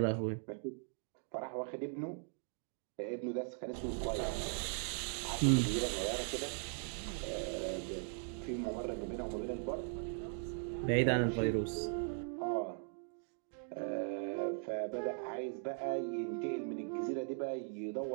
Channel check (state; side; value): silent; left; 51 dB below the other